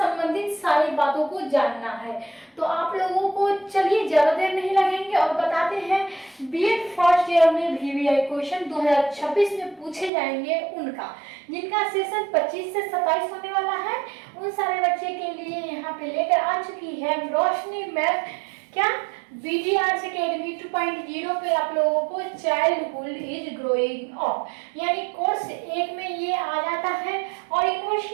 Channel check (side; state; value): left; drops out; at 10.1 s